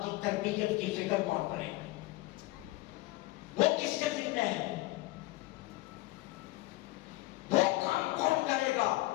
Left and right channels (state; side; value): quieter; right; 19.5 dB